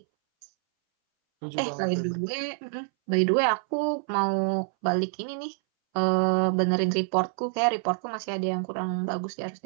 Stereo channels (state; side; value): silent; left; 60 dB below the other